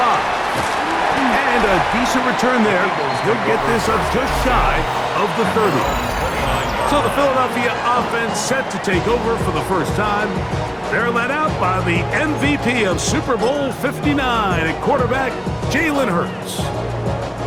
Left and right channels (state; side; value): identical; both; correlation 1.00